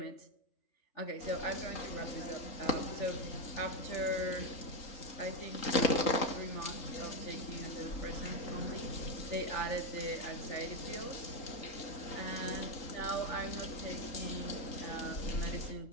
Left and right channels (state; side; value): late; right; 3.8 ms